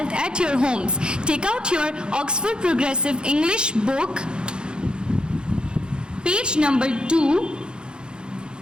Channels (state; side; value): late; left; 0.049 ms